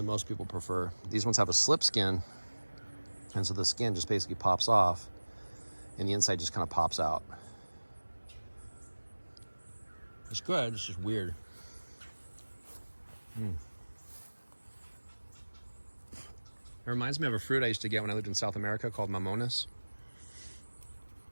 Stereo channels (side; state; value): both; inverted; correlation -1.00